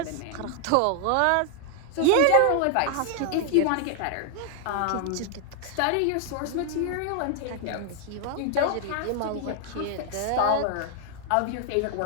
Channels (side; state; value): both; different; correlation 0.00